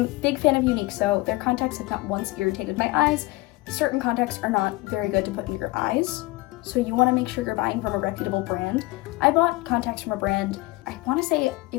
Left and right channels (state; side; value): quieter; right; 20.8 dB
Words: big fan of Unique So. Their contacts have not once irritated my eyes. Certain contacts are not very good to put in your eyes, so you want to make sure you're buying from a reputable brand. I bought contacts from a brand, I want to say